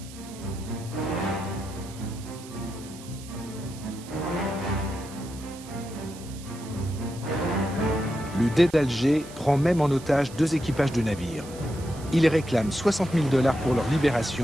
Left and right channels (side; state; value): right; noise; hiss, 18 dB below the sound